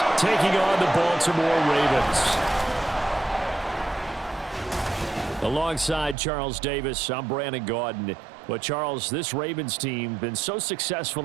taking on the Baltimore Ravens. Alongside Charles Davis, I'm Brandon Gaudin. But Charles, this Ravens team been so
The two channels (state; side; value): drops out; left; at 6.2 s